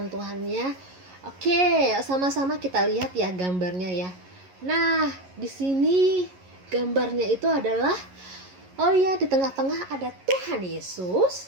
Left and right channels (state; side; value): late; left; 11 ms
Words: Tuhannya? Oke, sama-sama kita lihat ya gambarnya ya. Nah, di sini gambarnya itu adalah, oh ya, di tengah-tengah ada Tuhan